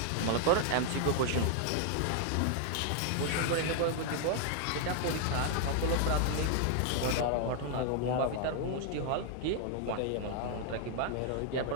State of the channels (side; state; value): both; different; correlation 0.00